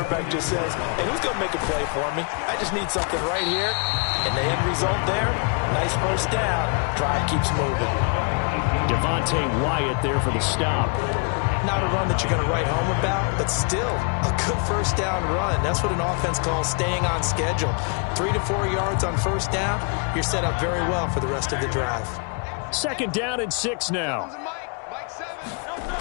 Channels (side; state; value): right; quieter; 38.2 dB